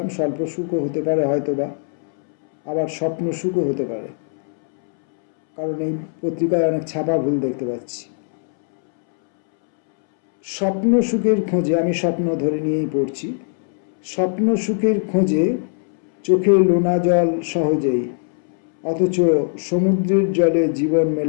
স্বল্প সুখও হতে পারে হয়তোবা, আবার স্বপ্ন সুখও হতে পারে, কারণ এই পত্রিকায় অনেক ছাপা ভুল দেখতে পাচ্ছি। স্বপ্ন সুখের খোঁজে, আমি স্বপ্ন ধরে নিয়েই পড়ছি। স্বপ্ন সুখের খোঁজে চোখে লোনা জল সহজেই, অথচ সমুদ্রের জলে জীবন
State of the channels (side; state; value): right; silent; 66 dB below the other